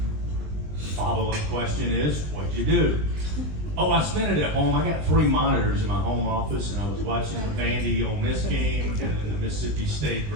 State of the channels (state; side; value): late; left; 20 ms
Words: Follow-up question is, what'd you do? Oh, I spent it at home. I got 3 monitors in my home office, and I was watching the Vandy Ole Miss game and then the Mississippi State